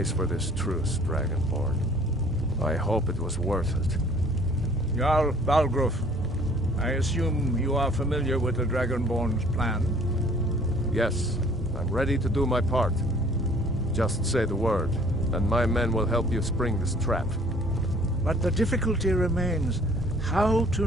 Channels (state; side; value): normal; both; correlation 0.55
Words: for this truce, Dragonborn. I hope it was worth it. Jarl Balgruf, I assume you are familiar with the Dragonborn's plan? Yes, I'm ready to do my part. Just say the word, and my men will help you spring this trap. But the difficulty remains how to